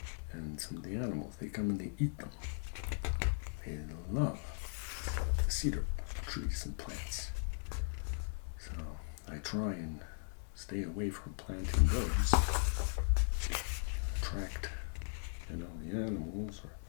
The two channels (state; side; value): silent; right; digital silence